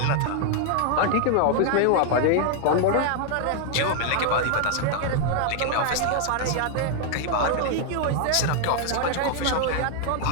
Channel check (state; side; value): different; both; correlation 0.00